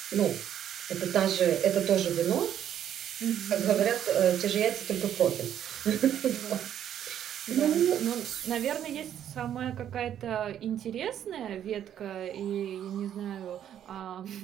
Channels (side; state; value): left; quieter; 10.2 dB